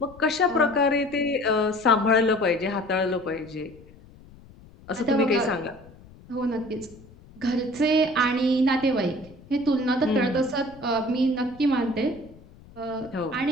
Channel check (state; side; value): noise; left; rumble, 22 dB below the sound